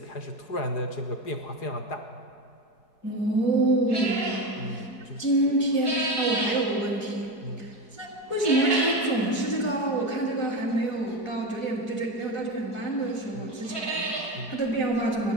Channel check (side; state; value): right; late; 4.7 ms